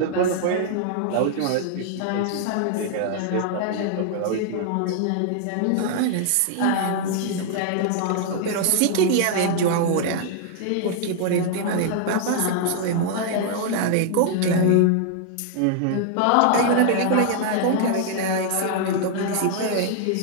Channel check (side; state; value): both; different; correlation 0.00